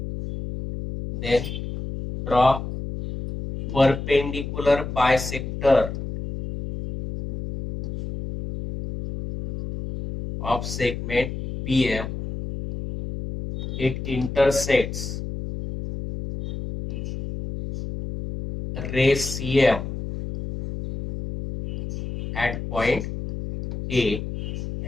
then draw perpendicular bisector of segment BM. It intersects ray CM at point A,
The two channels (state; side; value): noise; left; hum, 6 dB below the sound